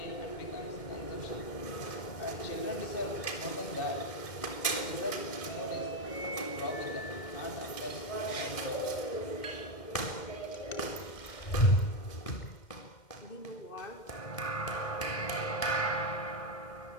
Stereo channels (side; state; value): right; late; 2.1 ms